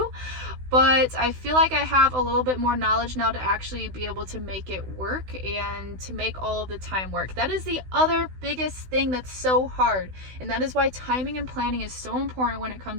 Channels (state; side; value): late; left; 16 ms